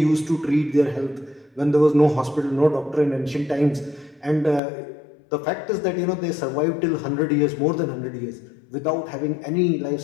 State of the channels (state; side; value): drops out; right; at 4.6 s